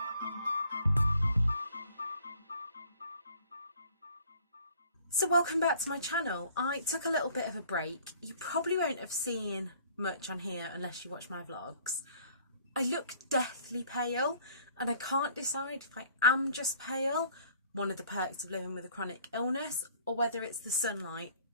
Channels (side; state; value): both; inverted; correlation -0.56